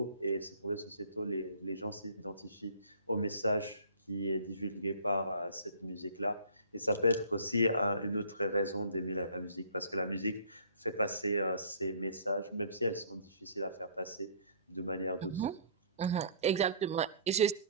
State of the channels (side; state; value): both; inverted; correlation -0.52